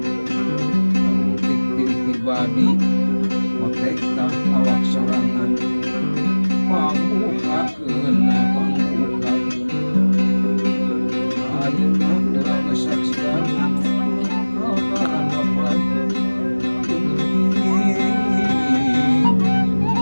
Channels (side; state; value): both; inverted; correlation -1.00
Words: ngabukti diri pribadi motek tah awak sorangan pambukakeun ayeuna urang saksian rokaran bapak